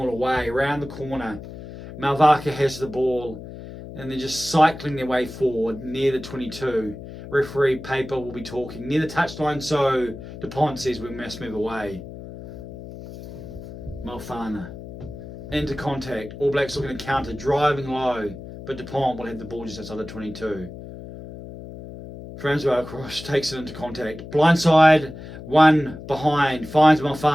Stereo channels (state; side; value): noise; left; hum, 13 dB below the sound